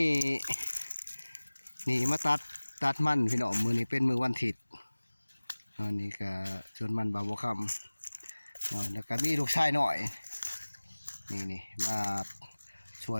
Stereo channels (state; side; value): inverted; both; correlation -1.00